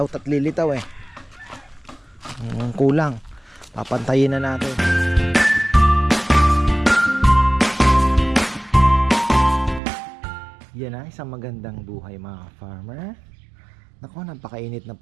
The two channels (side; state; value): left; drops out; at 9.8 s